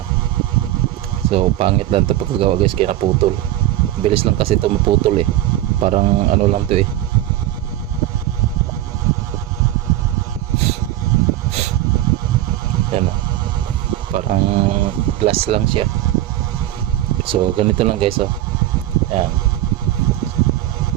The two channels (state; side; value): quieter; left; 14.0 dB